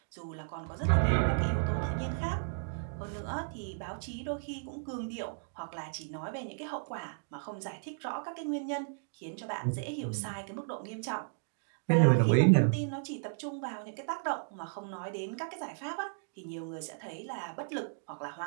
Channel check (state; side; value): silent; left; digital silence